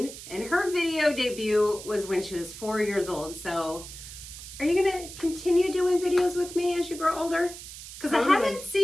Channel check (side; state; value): right; noise; hiss, 13 dB below the sound